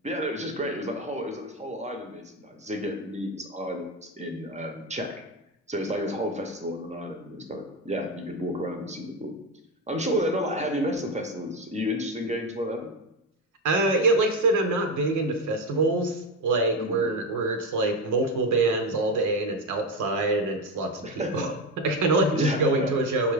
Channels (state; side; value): normal; both; correlation 0.15